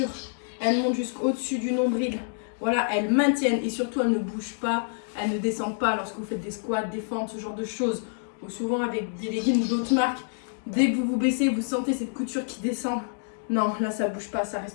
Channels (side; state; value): right; silent; digital silence